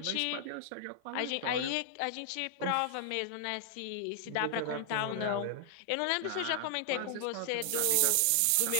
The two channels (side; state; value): both; different; correlation 0.00